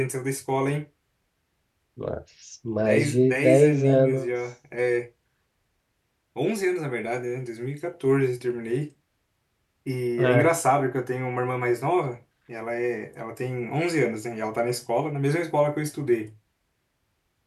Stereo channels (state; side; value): identical; both; correlation 1.00